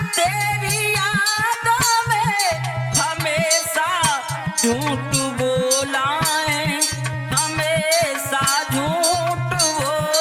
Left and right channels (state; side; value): identical; both; correlation 1.00